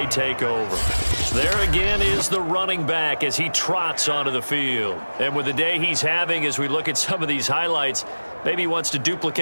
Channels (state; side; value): inverted; both; correlation -1.00